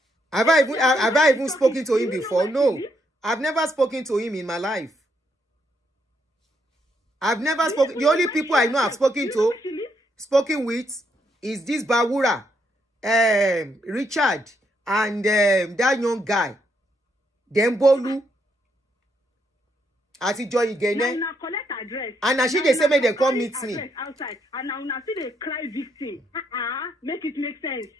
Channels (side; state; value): both; normal; correlation 0.76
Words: Have I even spoken to him before? No. I've never spoken to him in my life. I've never spoken. The only people I know I've spoken with is this Bawura, Richard, and that young guy, Dembolu. Ati Joy Igene. Now collect address. And she they say make them come meet me. Outside. And now see they cry victim. Make it make sense.